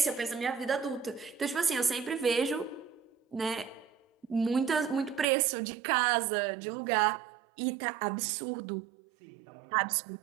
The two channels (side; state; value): left; drops out; at 5.2 s